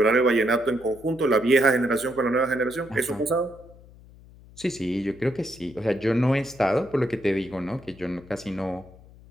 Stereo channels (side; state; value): left; noise; hum, 22 dB below the sound